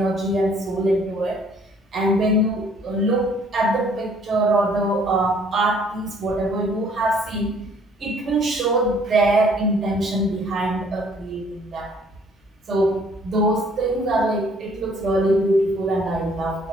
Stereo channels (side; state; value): both; normal; correlation 0.60